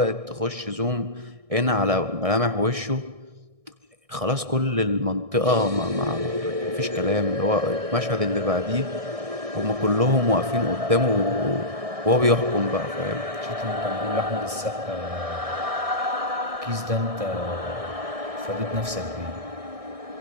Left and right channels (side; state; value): left; late; 1.6 ms